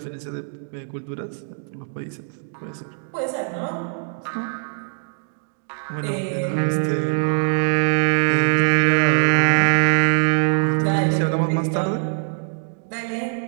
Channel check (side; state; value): left; silent; digital silence